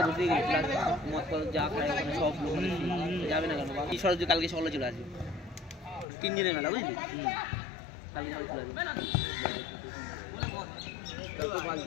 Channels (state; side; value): drops out; right; at 6.1 s